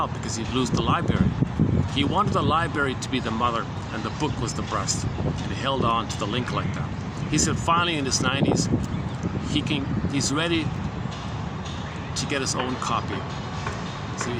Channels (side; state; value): both; identical; correlation 1.00